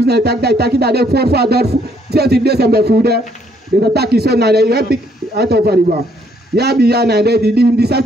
tak da de for father senti de sembe fude. De tak iso na de epic out of river. Ya bi ya na de di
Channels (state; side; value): normal; both; correlation 0.68